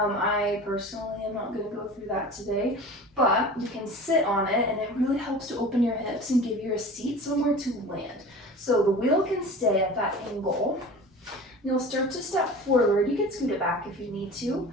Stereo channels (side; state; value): both; normal; correlation 0.38